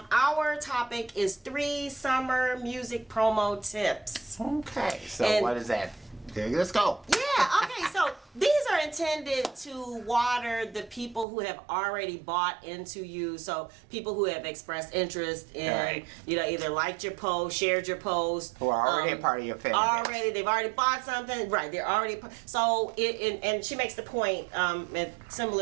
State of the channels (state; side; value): drops out; left; at 11.2 s